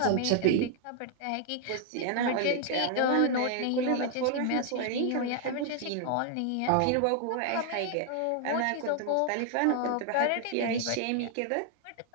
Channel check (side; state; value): both; different; correlation 0.00